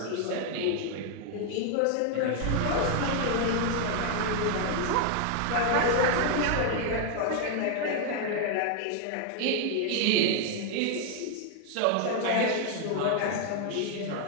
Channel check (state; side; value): different; both; correlation 0.00